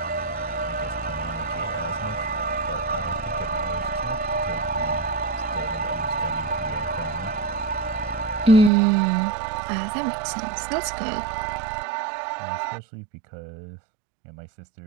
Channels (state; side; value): drops out; left; at 8.7 s